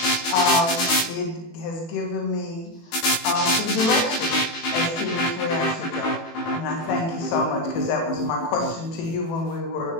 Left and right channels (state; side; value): late; right; 18 ms